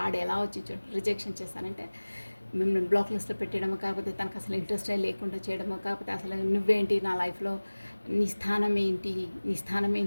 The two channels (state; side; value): inverted; both; correlation -1.00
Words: ఎలా వచ్చి రిజెక్షన్ చేశారంటే మిమ్మల్ని బ్లాక్ లిస్ట్లో పెట్టడమో, కాకపోతే తనకు అసలు ఇంట్రెస్టే లేకుండా చేయడమో, కాకపోతే అసలు నువ్వేంటి నా లైఫ్లో, నీ స్థానం ఏంటి, నీ స్థానం